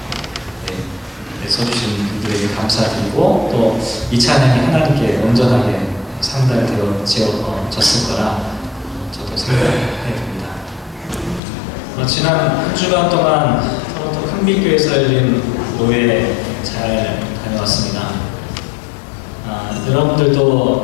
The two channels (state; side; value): drops out; right; at 11.4 s